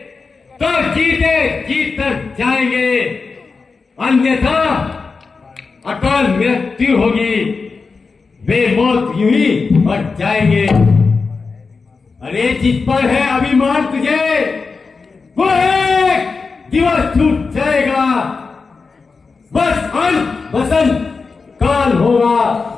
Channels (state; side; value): quieter; right; 4.6 dB